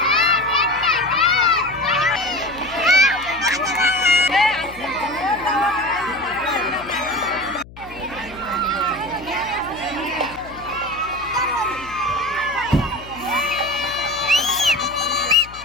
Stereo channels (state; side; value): noise; left; hum, 19 dB below the sound